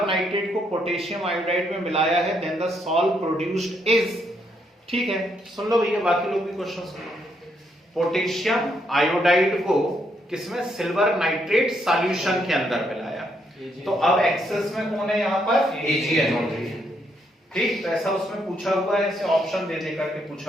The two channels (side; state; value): both; normal; correlation 0.75